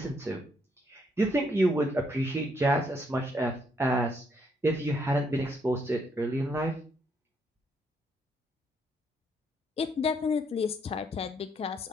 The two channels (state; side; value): normal; both; correlation 0.72